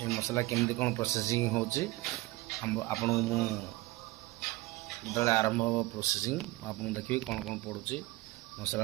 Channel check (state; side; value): quieter; left; 20.2 dB